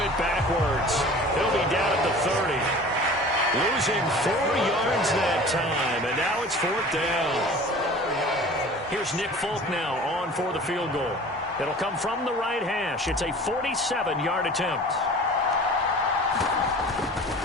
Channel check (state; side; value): normal; both; correlation 0.42